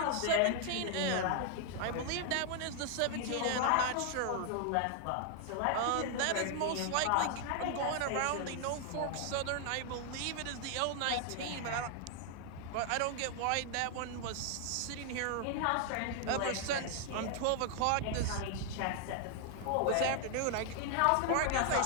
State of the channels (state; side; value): different; both; correlation 0.00